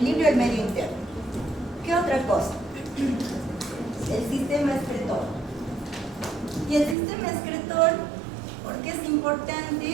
del medio interno. ¿Qué otra cosa? El sistema excretor. Y el sistema excretor, ¿por qué es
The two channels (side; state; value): left; drops out; at 7.0 s